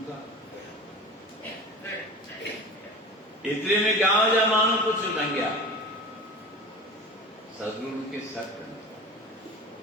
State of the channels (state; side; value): normal; both; correlation 0.35